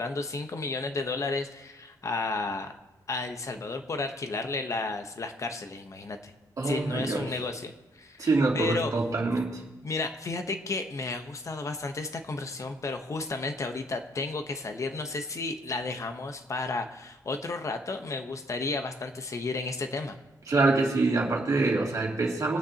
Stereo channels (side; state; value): both; normal; correlation 0.66